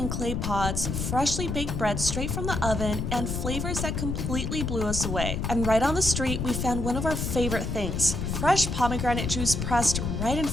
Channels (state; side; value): noise; left; rumble, 2 dB below the sound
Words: clay pots, freshly baked bread straight from the oven, and flavors that completely blew us away. And right on the street, we found one of our favorite things, fresh pomegranate juice pressed right in